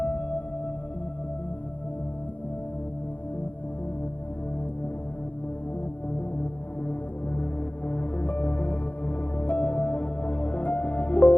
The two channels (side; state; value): right; late; 0.075 ms